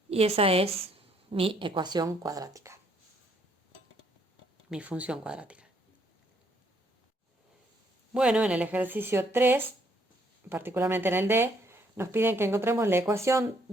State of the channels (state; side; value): normal; both; correlation 0.68